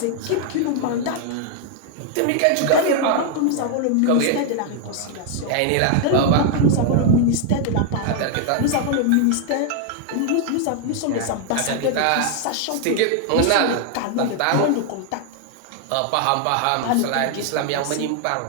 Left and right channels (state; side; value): different; both; correlation 0.00